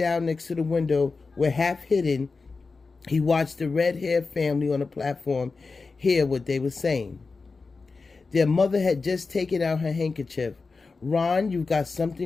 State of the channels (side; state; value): right; quieter; 4.2 dB